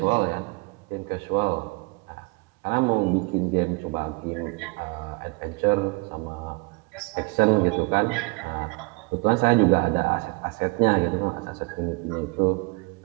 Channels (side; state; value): left; quieter; 28.4 dB